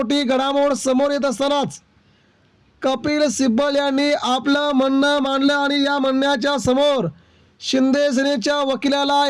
घडामोड समोर येत असतानाच कपिल सिब्बल यांनी आपलं म्हणणं मांडलं आणि या म्हणण्याच्या समोर शिंदे सेनेच्या वकिलाला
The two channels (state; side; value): identical; both; correlation 1.00